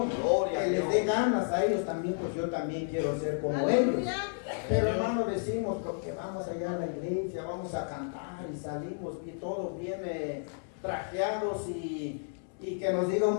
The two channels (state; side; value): silent; right; digital silence